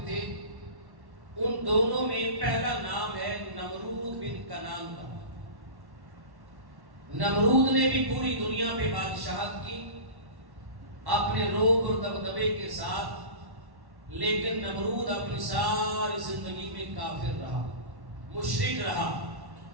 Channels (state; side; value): late; left; 1.1 ms